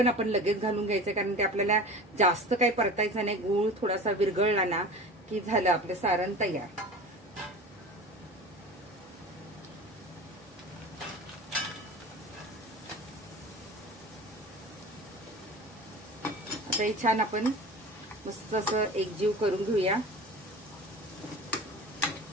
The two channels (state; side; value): normal; both; correlation 0.35